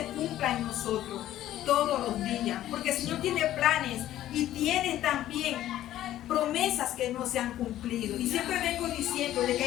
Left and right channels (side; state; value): right; quieter; 13.2 dB